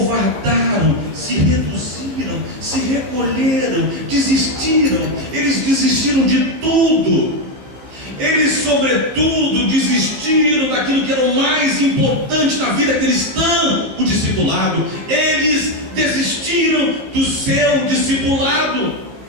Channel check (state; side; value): late; left; 16 ms